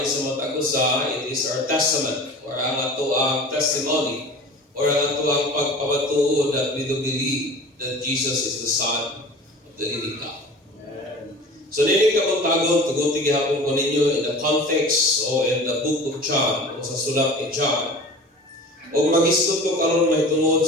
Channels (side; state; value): both; normal; correlation 0.39